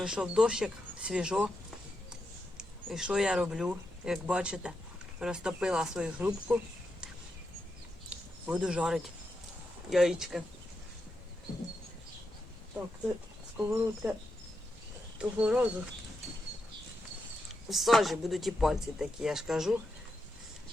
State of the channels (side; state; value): both; normal; correlation 0.85